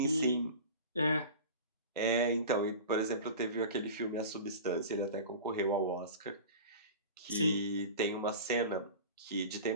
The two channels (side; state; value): both; inverted; correlation -0.34